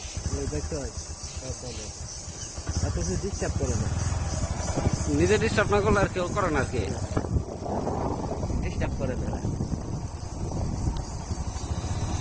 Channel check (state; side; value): identical; both; correlation 1.00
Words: এত কিছু ডিস্টার্ব করে না, নিজে ডিস্টার্ব না করলে আর কেউ করে না আর কি। ডিস্টার্ব করে না।